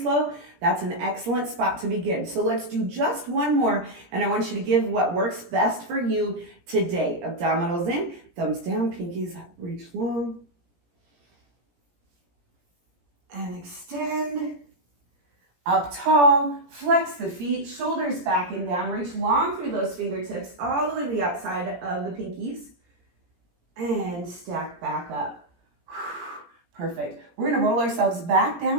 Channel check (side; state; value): left; late; 17 ms